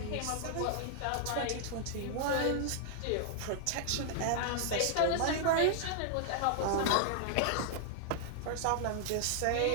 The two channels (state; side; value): different; both; correlation -0.01